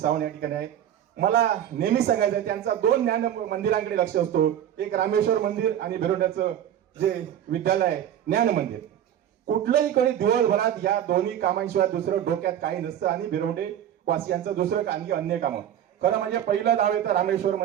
या ठिकाणी आहे. मला नेहमी सांगायचं आहे, त्यांचा 2 ज्ञान मंदिरांकडे लक्ष असतो, एक रामेश्वर मंदिर आणि भिरोंड्याचं जे विद्यालय आहे ज्ञान मंदिर. कुठलंही कधी दिवसभरात या दोन्ही कामांशिवाय दुसरं डोक्यात काही नसतं आणि भिरोंडे वासियांचं दुसरं काही अन्य कामं. खरं म्हणजे पहिलं नाव येतं रामेश्वर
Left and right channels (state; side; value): quieter; left; 10.5 dB